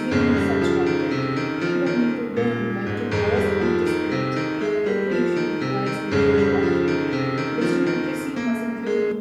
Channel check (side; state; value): both; identical; correlation 1.00